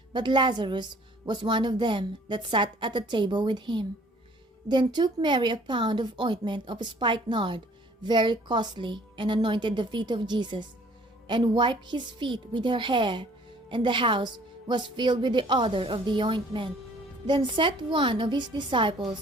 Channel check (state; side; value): normal; both; correlation 0.56